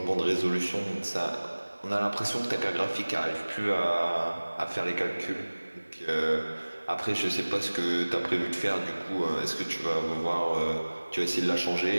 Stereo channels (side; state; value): both; inverted; correlation -1.00